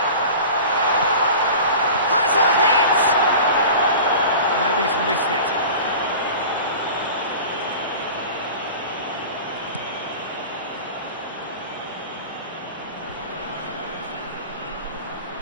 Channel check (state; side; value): inverted; both; correlation -0.37